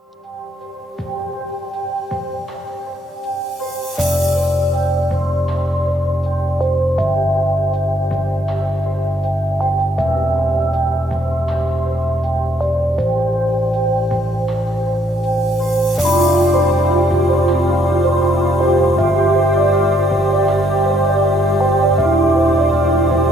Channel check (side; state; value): both; normal; correlation 0.69